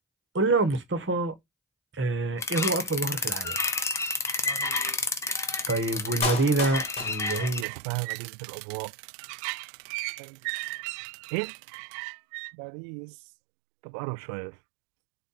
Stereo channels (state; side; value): drops out; left; at 7.7 s